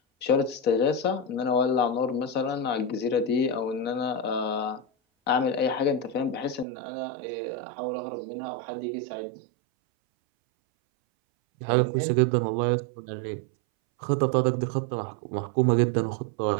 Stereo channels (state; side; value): drops out; left; at 6.7 s